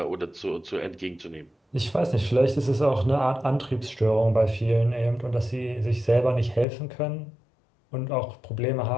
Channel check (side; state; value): right; drops out; at 6.7 s